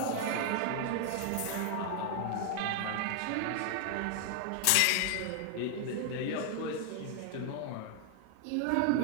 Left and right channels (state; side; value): different; both; correlation 0.00